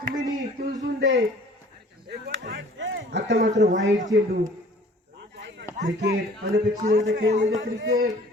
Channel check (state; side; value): normal; both; correlation 0.51